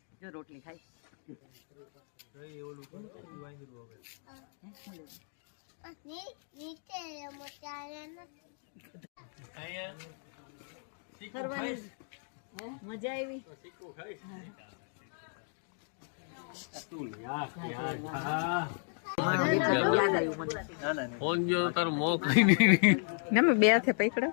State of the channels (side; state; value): right; silent; 55 dB below the other